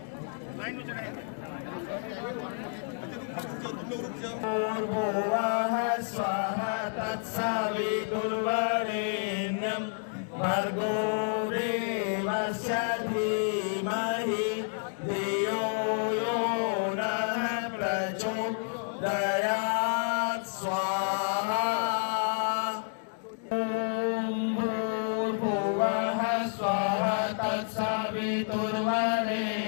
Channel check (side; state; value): right; silent; digital silence